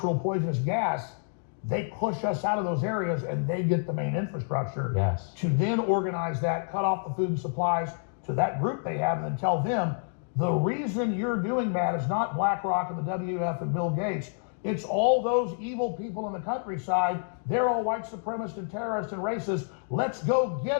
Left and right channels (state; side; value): silent; right; digital silence